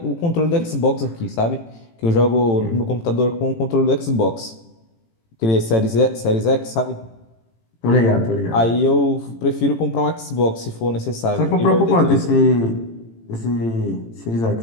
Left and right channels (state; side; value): late; right; 18 ms